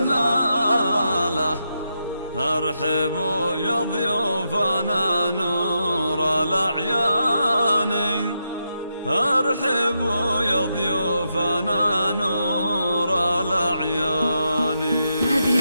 ارحبوا يا ضيوفنا نور الأعيان، ارحبوا يا ضيوفنا نور الأعيان. هذه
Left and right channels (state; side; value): inverted; both; correlation -0.83